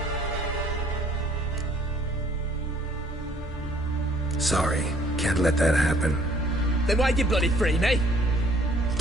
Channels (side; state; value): both; normal; correlation 0.59